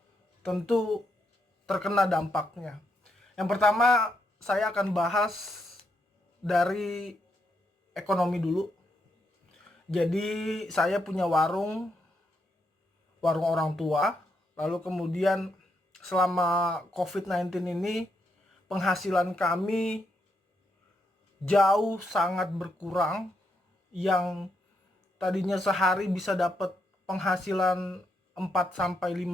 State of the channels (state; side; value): normal; both; correlation 0.79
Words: tentu terkena dampaknya. Yang pertama, saya akan bahas dari ekonomi dulu. Jadi saya punya warung orang tua, lalu kemudian selama COVID-19 ini penghasilan kami jauh sangat berkurang, yang tadinya sehari bisa dapat penghasilan 4 sampai